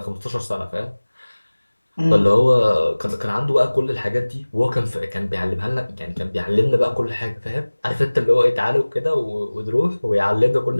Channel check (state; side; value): inverted; both; correlation -1.00